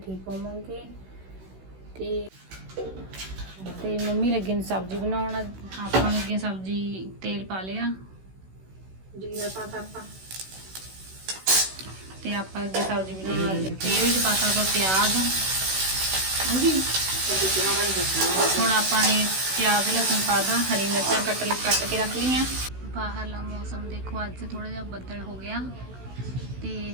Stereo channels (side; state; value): left; late; 16 ms